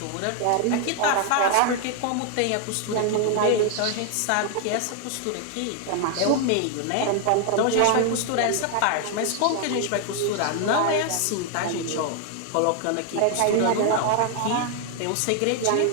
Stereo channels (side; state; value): both; different; correlation 0.00